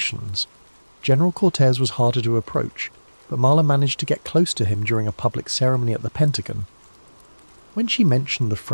General Cortez was harder to approach, but Marla managed to get close to him during a public ceremony at the Pentagon. When she mentioned the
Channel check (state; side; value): inverted; both; correlation -1.00